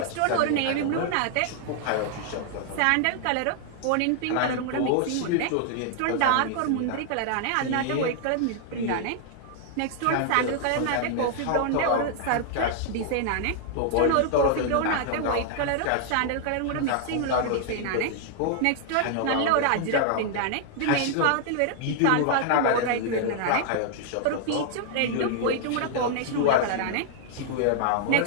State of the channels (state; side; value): different; both; correlation 0.00